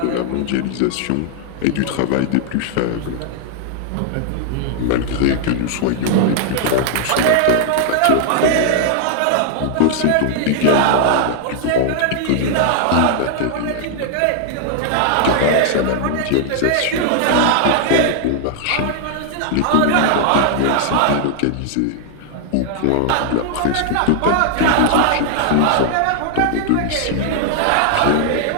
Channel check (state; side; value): different; both; correlation -0.01